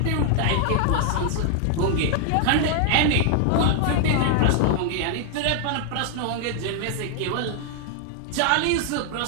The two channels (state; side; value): different; both; correlation 0.00